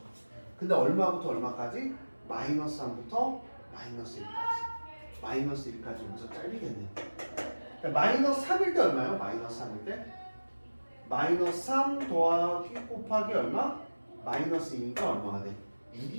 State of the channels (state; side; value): inverted; both; correlation -1.00